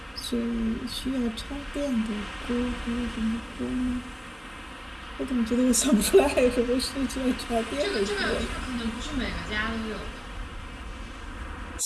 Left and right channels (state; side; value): identical; both; correlation 1.00